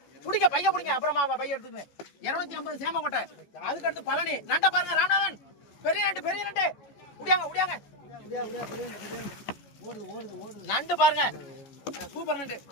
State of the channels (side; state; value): right; late; 14 ms